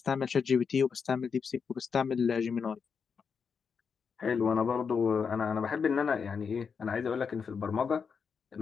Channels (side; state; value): right; quieter; 6.0 dB